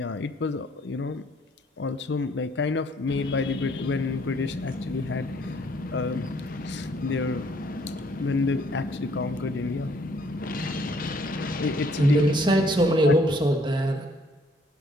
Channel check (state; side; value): normal; both; correlation 0.63